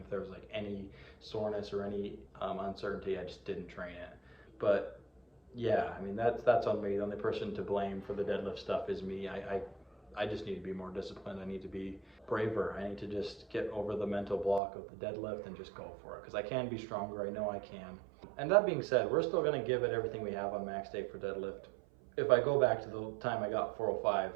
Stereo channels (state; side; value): drops out; left; at 14.6 s